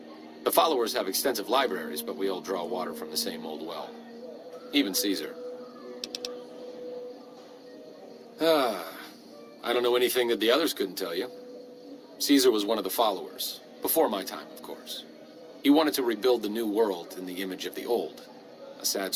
The followers have extensive libraries, but we all draw water from the same old well. Even Caesar. I don't know anything that the others couldn't tell you. Caesar was one of the followers. Before my time, of course. He wanted to rebuild the new world in the image of the old. A sad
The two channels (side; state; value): both; identical; correlation 1.00